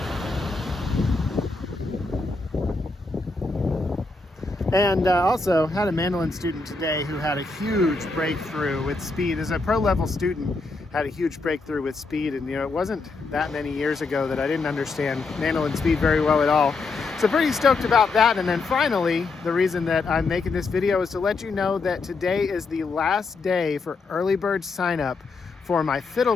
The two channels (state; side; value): quieter; right; 3.8 dB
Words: And also had a mandolin student today who had a huge breakthrough with speed. As a pro level student, had a huge breakthrough with speed, and it wasn't that many years ago that I didn't understand mandolin speed very well at all. So pretty stoked about that. And then finally, the reason that I'm making this video is to let you know that today is the last day for early bird sign up for my